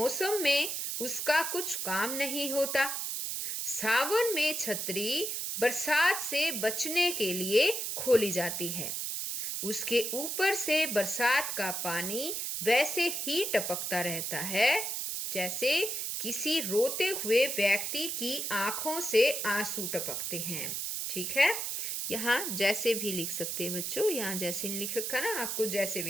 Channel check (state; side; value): noise; right; hiss, 2 dB below the sound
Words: में उसका कुछ काम नहीं होता। सावन में छतरी बरसात से बचने के लिए खोली जाती है। उसके ऊपर से बरसात का पानी वैसे ही टपकता रहता है जैसे किसी रोते हुए व्यक्ति की आंखों से आंसू टपकते हैं। ठीक है, यहाँ जैसे भी लिख सकते हैं बच्चों, यहाँ जैसे नहीं लिख रखा ना, आपको जैसे